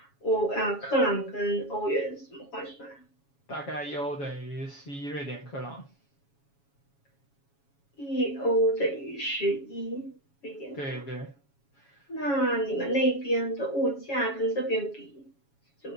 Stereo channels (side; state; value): right; late; 7.2 ms